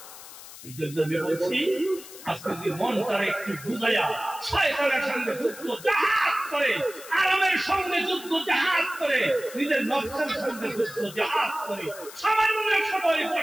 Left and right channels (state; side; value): noise; left; hiss, 16 dB below the sound